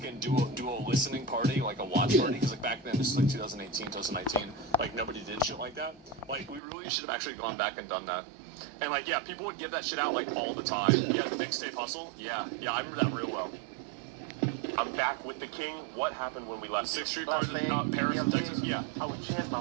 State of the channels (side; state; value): left; drops out; at 6.6 s